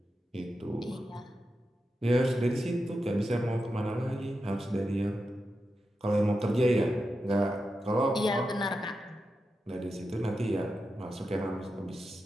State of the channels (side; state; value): both; normal; correlation 0.89